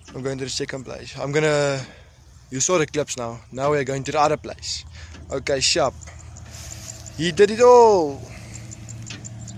I'm going to the second place. You saw the clips now. Now we're going to the other place. Okay, sharp. He did it all.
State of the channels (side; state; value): both; identical; correlation 1.00